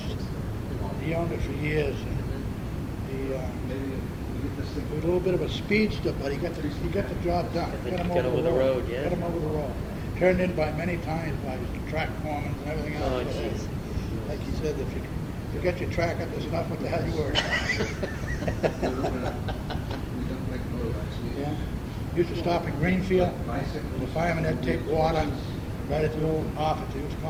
He owned it for years. And he was a little bit of a speedster, but he got the job done. Get him over the road, yeah. Got him over the road. Turned in by many times by track foremen and everything else. Oh, jeez. Like he said, if you get your track up, there's enough. What the hell you worry about? Yeah. Used to stop in Greenfield. The firemen had to take water right at the old office. They used to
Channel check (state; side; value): identical; both; correlation 1.00